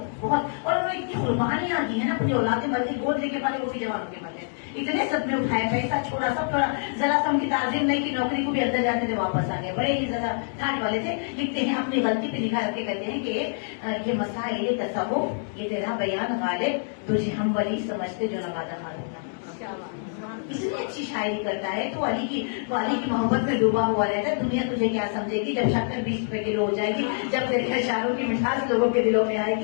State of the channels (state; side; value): silent; right; digital silence